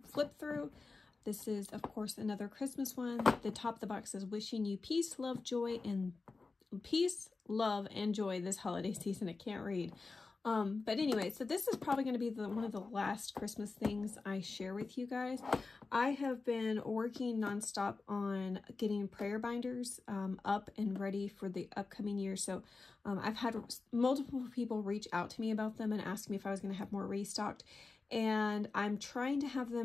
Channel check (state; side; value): quieter; right; 4.0 dB